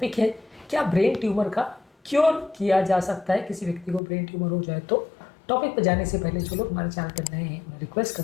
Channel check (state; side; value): drops out; right; at 4.0 s